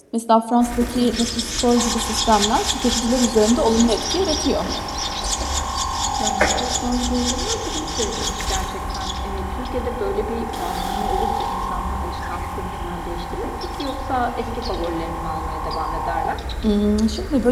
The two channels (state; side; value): identical; both; correlation 1.00